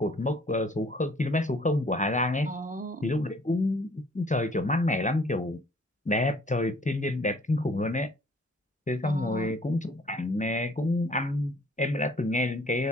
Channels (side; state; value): both; normal; correlation 0.58